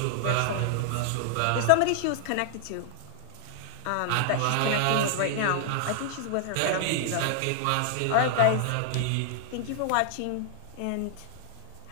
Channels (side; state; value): both; different; correlation -0.01